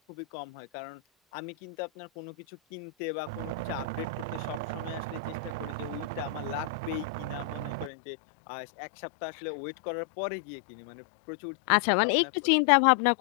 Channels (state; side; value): drops out; right; at 7.9 s